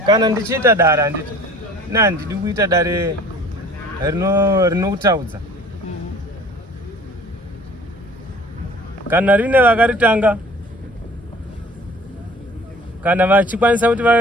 kana ndichiita dare handiti handidi kuita dare rinokutaudza kana rine vakaritanga kana vachikwanisa kuti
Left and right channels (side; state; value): both; normal; correlation 0.48